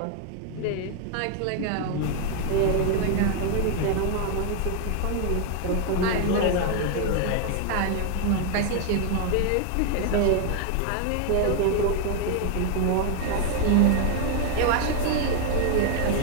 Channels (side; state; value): both; different; correlation 0.00